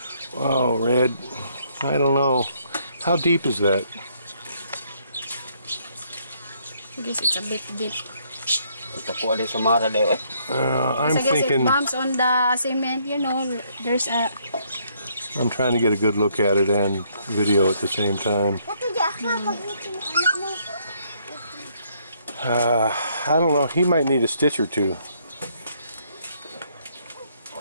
Oh, Red, I don't know. How deep is that? I guess it's a bit deep. I'm thinking... it bumps on the cement, you know, there's a... I'm trying to get a good look at it and video at the same time. I don't know, he might need a stitch or two.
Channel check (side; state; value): both; inverted; correlation -0.69